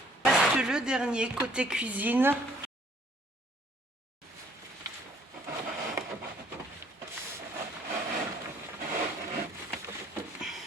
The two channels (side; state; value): both; normal; correlation 0.61